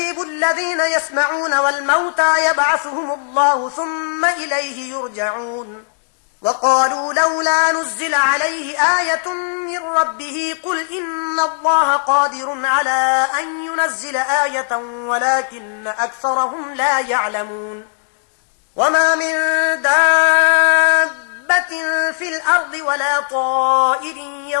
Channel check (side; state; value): right; silent; digital silence